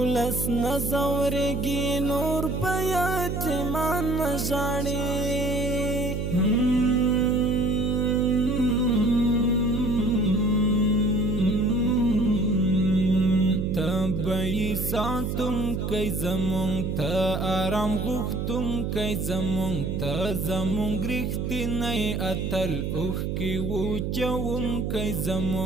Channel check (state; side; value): noise; right; hum, 2 dB below the sound